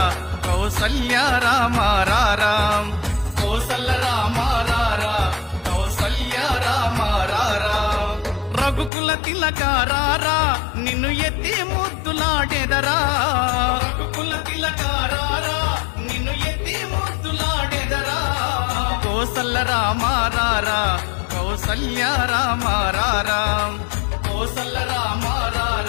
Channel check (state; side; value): drops out; right; at 8.9 s